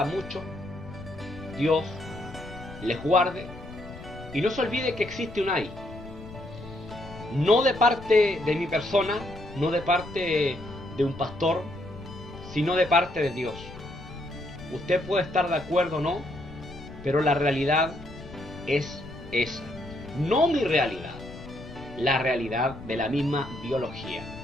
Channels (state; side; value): noise; left; rumble, 15 dB below the sound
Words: mucho, Dios les guarde, y no se olvide que existe un ay. No de parte de mi persona, no de parte de un pastor, sino de parte de Dios. Usted puede estar de acuerdo o no, pero la realidad es esa. No mi realidad, la realidad de la misma biología.